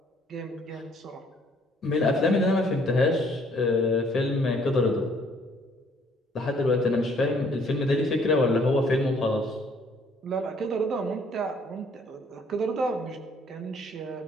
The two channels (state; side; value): normal; both; correlation 0.62